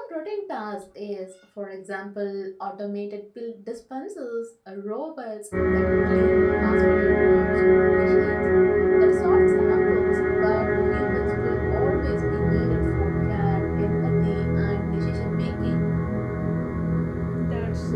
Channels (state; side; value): identical; both; correlation 1.00